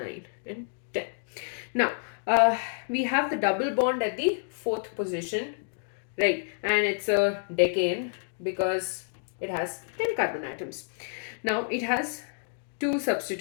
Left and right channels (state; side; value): silent; right; digital silence